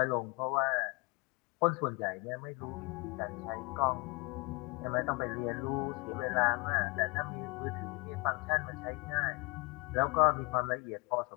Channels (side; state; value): right; quieter; 28.3 dB